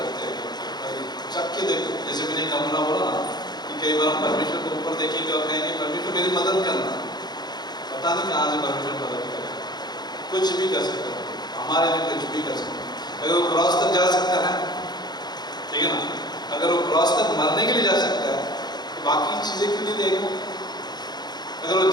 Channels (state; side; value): late; right; 0.20 ms